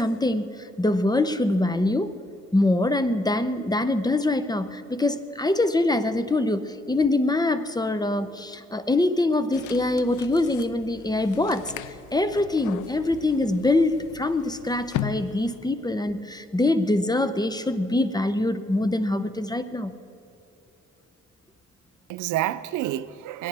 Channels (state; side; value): normal; both; correlation 0.74